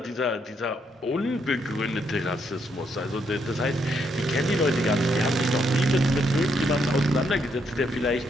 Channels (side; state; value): both; normal; correlation 0.76